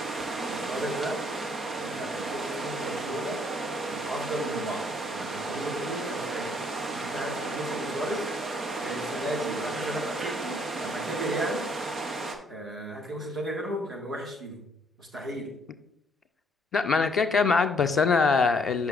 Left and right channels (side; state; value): both; normal; correlation 0.66